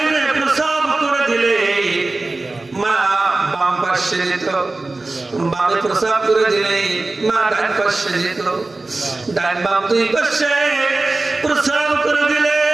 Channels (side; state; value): left; quieter; 3.2 dB